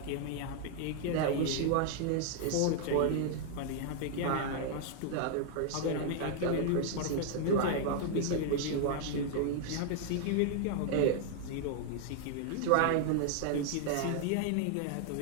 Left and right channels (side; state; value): both; different; correlation 0.00